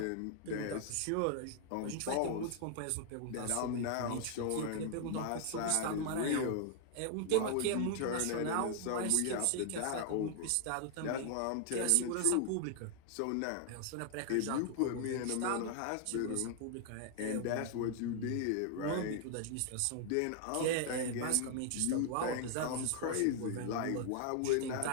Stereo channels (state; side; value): different; both; correlation 0.00